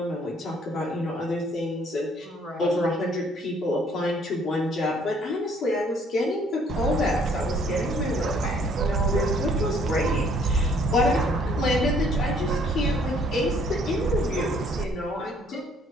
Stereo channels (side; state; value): both; normal; correlation 0.62